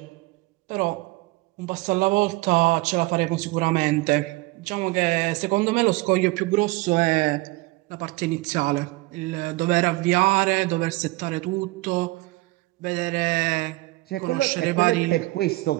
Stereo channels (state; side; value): quieter; left; 21.8 dB